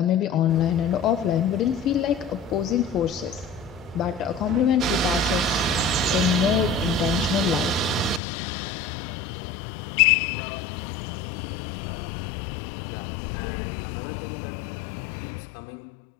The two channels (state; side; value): drops out; right; at 8.2 s